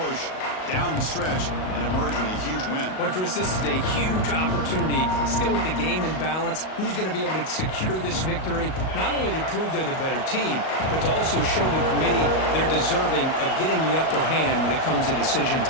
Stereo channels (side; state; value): right; late; 38 ms